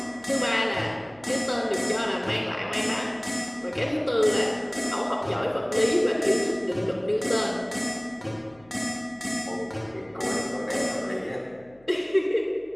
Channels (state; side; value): noise; left; hum, 29 dB below the sound